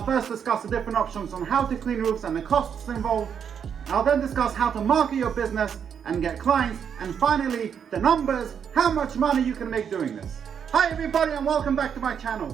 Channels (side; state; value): left; quieter; 7.6 dB